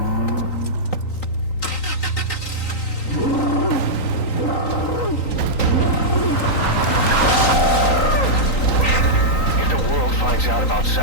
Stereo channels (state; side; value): late; right; 3.9 ms